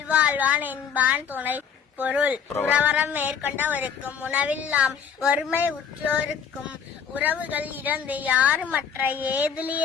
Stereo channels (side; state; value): right; quieter; 7.2 dB